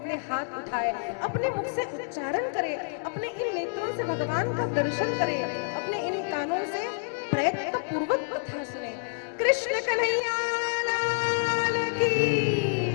हाथ उठाए, अपने मुख से उच्चारण करे, अपने इन नेत्रों से भगवान का दर्शन करे, अपने इन कानों से प्रयत्न पूर्वक कथा सुने। कृष्ण कन्हैया लाल की,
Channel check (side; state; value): right; silent; digital silence